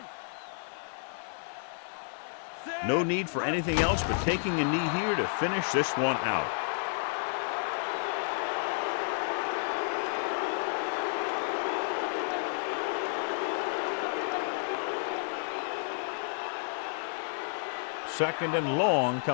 noise! No need for anything else but taking a knee here to finish this one out. Second and long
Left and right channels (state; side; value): silent; right; digital silence